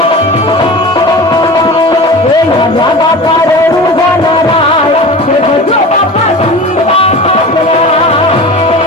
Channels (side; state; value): both; normal; correlation 0.34